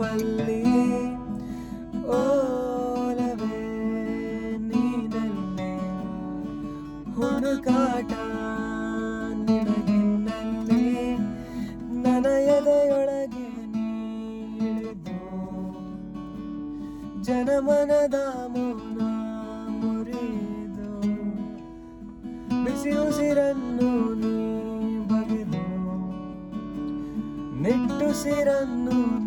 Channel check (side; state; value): both; identical; correlation 1.00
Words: ಓಲವೇ ನೀನಲ್ಲಿ ಹುಡುಕಾಟ ನಿನಗಿನ್ನಲ್ಲಿ ನನ್ನ ಎದೆಯೊಳಗೆ ನೀ ಇಳಿದು ಜನಮನದ ಮೌನ ಮುರಿದು ಬಿಸಿ ಉಸಿರನ್ನು ನೀ ಬಗೆದು ನಿಟ್ಟುಸಿರನ್ನು